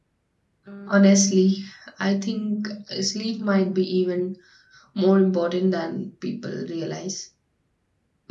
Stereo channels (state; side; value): identical; both; correlation 1.00